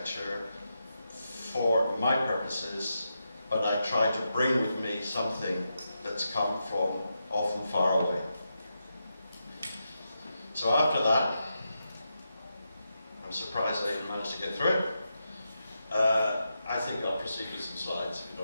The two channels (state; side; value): inverted; both; correlation -0.86